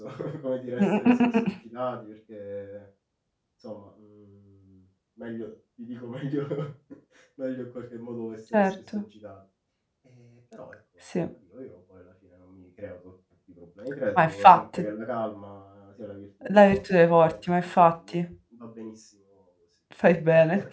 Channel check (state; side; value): identical; both; correlation 1.00